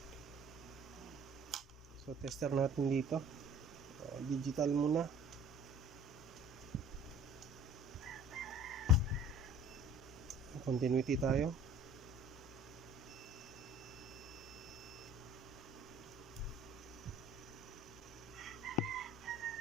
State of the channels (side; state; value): both; normal; correlation 0.49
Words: So tester natin dito. Digital muna. Continuity tayo.